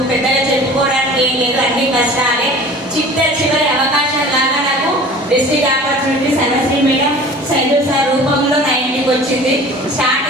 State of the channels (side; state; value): both; normal; correlation 0.43